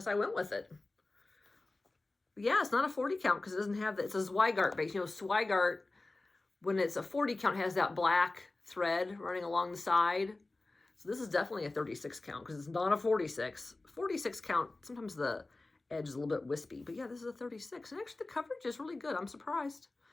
I went with it. Yeah, it's not a 40 count because it doesn't have that. It's a Zweigart base. You know, Zweigart, when it's a 40 count, has that black thread running along the side. So this is definitely a 36 count because it's not a 46. 46 count, sometimes the edge is a little bit wispy. But yeah, this is a 36. And actually the coverage is really good. I'm surprised.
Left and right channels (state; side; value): quieter; right; 3.1 dB